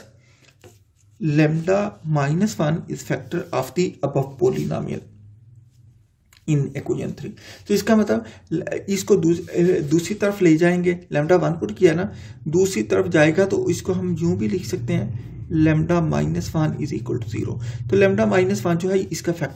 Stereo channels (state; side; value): identical; both; correlation 1.00